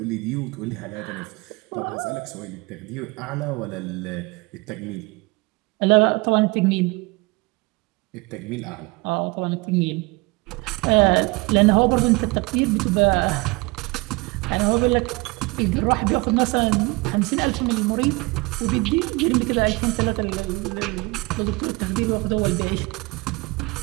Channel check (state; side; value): quieter; left; 25.6 dB